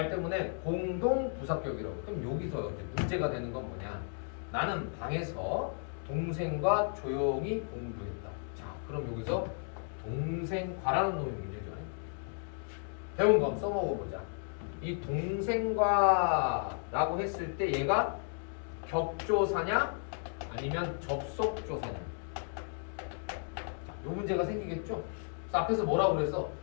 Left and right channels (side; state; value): right; silent; 55 dB below the other